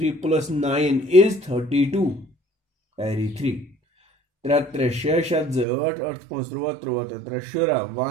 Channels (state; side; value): drops out; left; at 5.7 s